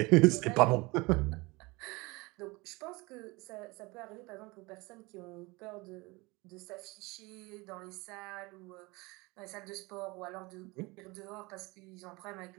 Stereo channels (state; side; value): quieter; left; 24.2 dB